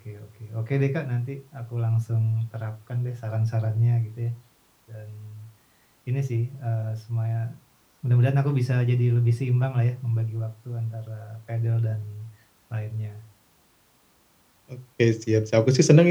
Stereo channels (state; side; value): identical; both; correlation 1.00